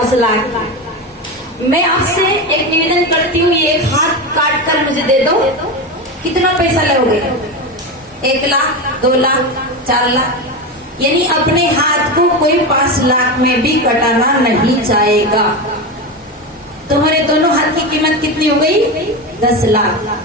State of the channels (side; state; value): both; normal; correlation 0.19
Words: लाख। मैं आपसे एक निवेदन करती हूँ, ये एक हाथ काट कर मुझे दे दो, कितना पैसा लोगे? 1 लाख, 2 लाख, 4 लाख। यानी अपने हाथ को कोई 5 लाख में भी कटाना नहीं चाहेगा। तुम्हारे दोनों हाथ की कीमत कितनी हो गई? 10